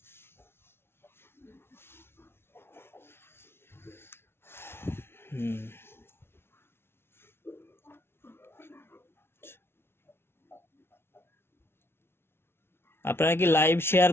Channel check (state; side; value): late; right; 0.12 ms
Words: আপনারা কি লাইভ শেয়ার